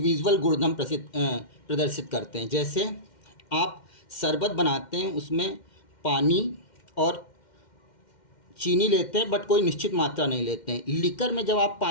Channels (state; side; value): late; right; 2.1 ms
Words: गुणधर्म प्रदर्शित करते हैं। जैसे आप शरबत बनाते हैं, उसमें पानी और चीनी लेते हैं बट कोई निश्चित मात्रा नहीं लेते हैं। लिकर में जब आप